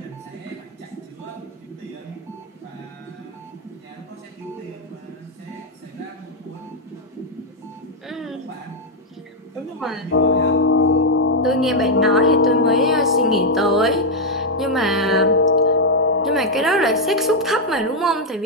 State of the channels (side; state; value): both; normal; correlation -0.02